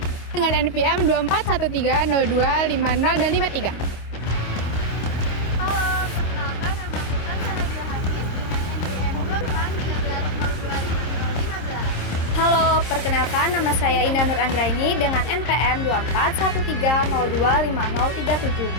dengan NPM 24130250 dan 53. Halo, perkenalkan nama aku Kansana Nabila Hafiz dengan NPM 2413025015. Halo, perkenalkan nama saya Indah Nur Anggraini dengan NPM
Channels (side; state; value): right; late; 26 ms